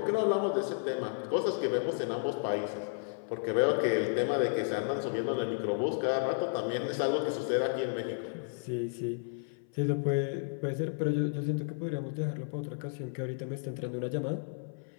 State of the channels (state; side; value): silent; right; 56 dB below the other